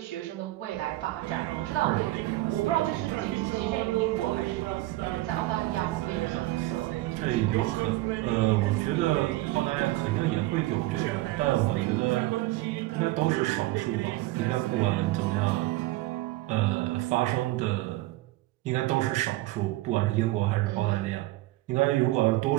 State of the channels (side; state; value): left; quieter; 18.0 dB